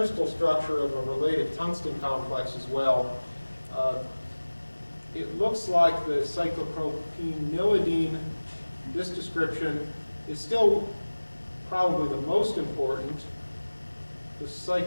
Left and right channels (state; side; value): inverted; both; correlation -1.00